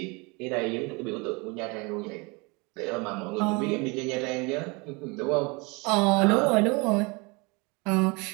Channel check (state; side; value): quieter; left; 28.0 dB